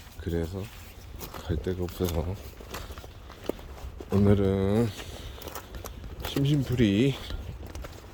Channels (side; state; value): both; identical; correlation 1.00